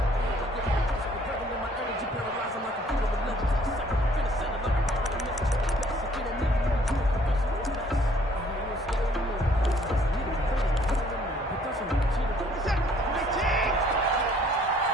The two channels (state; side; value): normal; both; correlation 0.60